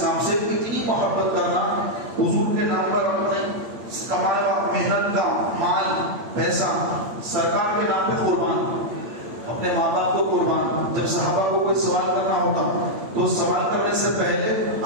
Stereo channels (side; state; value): left; late; 8.7 ms